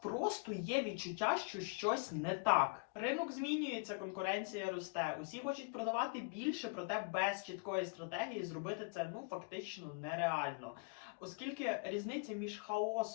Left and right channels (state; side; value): quieter; right; 32.8 dB